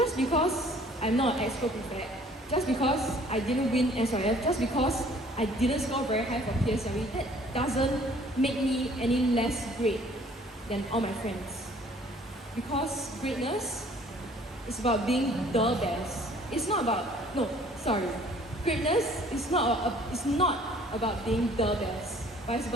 because I'm not an expert prefect, just because I didn't win SRF, just because I I didn't score very high for PSLE, that doesn't make me any less great than all my friends. Because greatness is about being the best. It's not about, no, sorry. Greatness is not about being the best, but it's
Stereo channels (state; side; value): normal; both; correlation 0.55